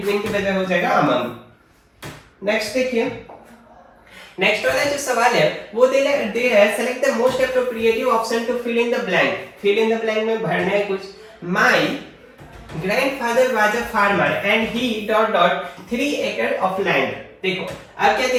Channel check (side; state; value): both; identical; correlation 1.00